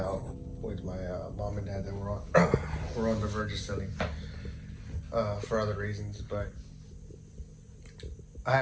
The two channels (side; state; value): both; identical; correlation 1.00